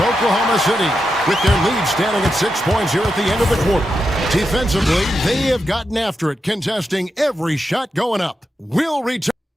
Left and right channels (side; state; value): both; normal; correlation 0.87